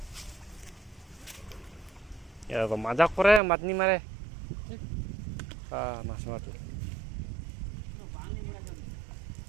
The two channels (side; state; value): left; drops out; at 3.4 s